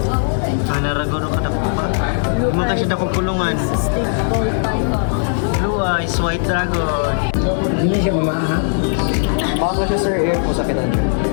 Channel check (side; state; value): right; silent; digital silence